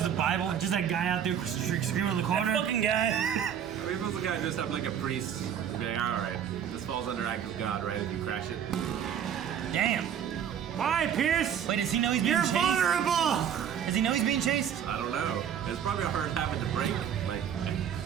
a Bible, just that guy out there screaming in the corner. That fucking guy. I mean, if it was a guy dressed up like a priest, he'd be like, all right, this falls under act of God, right, if you crash it? Damn. Why, Pierce? Wait, does he know he's being chased? You're vulnerable! Does he know he's being chased? I don't know. It's probably a hard habit to break, like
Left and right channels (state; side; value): quieter; left; 8.9 dB